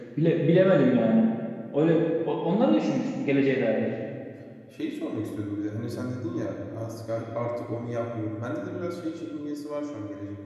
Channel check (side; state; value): both; identical; correlation 1.00